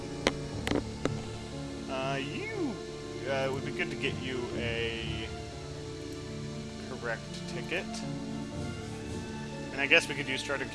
It would be good to get you a correct ticket. And I guess we could use Chartered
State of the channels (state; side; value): identical; both; correlation 1.00